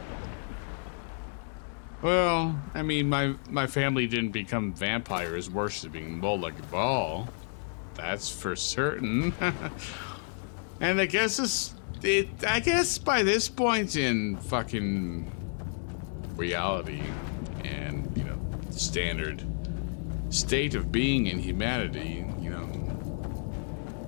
Well, I mean, my family didn't become vampires worshipping Molag Bal. That's for certain. And I guess I guess by this point in fucking reality and, you know, standard state of being in humanity, you know,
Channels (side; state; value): right; silent; digital silence